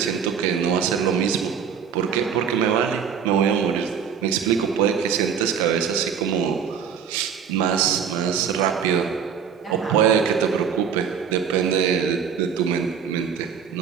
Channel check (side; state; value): left; quieter; 7.2 dB